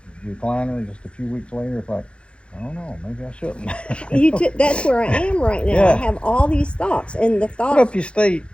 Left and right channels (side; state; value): right; late; 0.058 ms